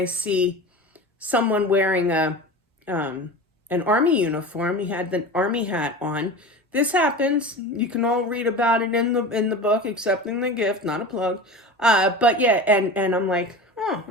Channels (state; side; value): normal; both; correlation 0.32